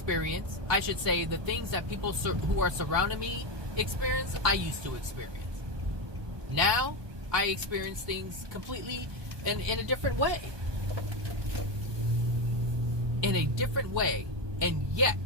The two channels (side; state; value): left; late; 1.2 ms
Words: I should say, the things that people who are surrounding me experience, I used to experience. Now, I experience things completely in a different way. In a different way. And yet,